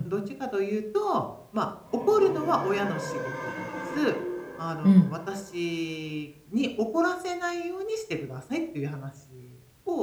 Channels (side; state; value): both; identical; correlation 1.00